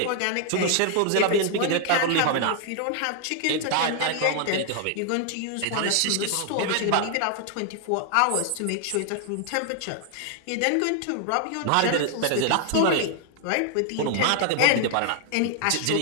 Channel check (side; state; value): both; different; correlation 0.00